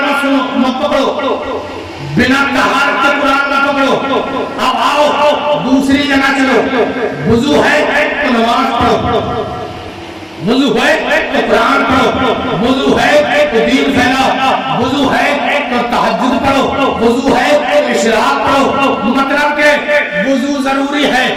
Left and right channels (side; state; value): both; identical; correlation 1.00